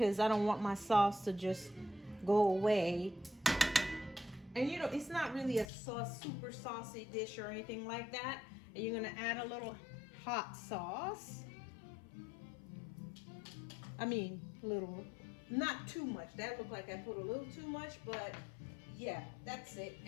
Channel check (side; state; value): right; drops out; at 5.7 s